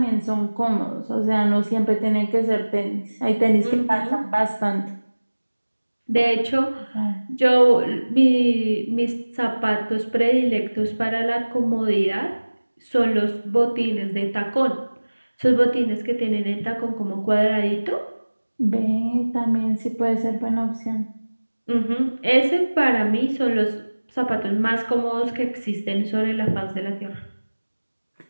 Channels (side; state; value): both; inverted; correlation -1.00